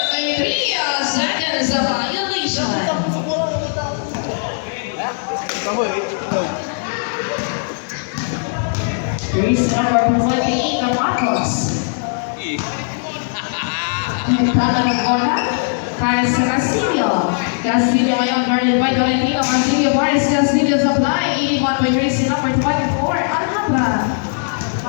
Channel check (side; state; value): right; silent; digital silence